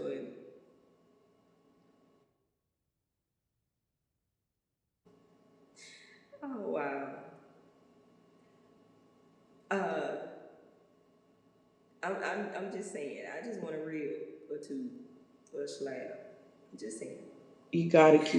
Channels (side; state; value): both; identical; correlation 1.00